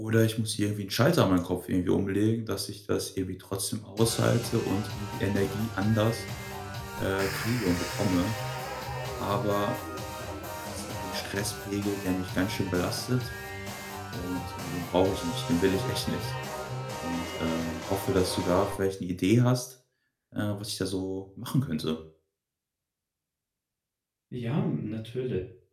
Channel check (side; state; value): both; identical; correlation 1.00